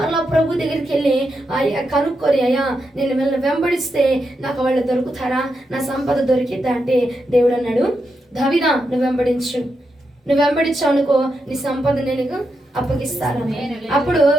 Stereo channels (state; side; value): normal; both; correlation 0.85